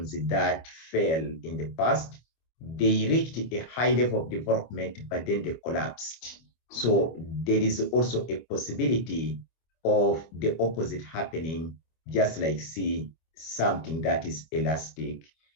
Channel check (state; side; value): late; right; 25 ms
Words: that fell in the past. They reached a high level of development, but then they collapsed. So there is also a possibility of the opposite happening, just like see something that is elastic.